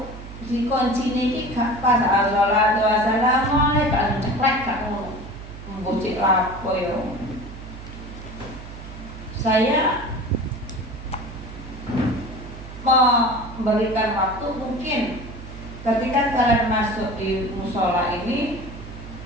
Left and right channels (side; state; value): right; noise; hum, 13 dB below the sound